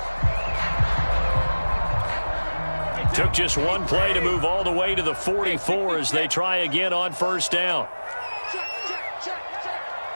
Took just one play to move all the way to the 44 as they try again on first down.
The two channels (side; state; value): both; inverted; correlation -1.00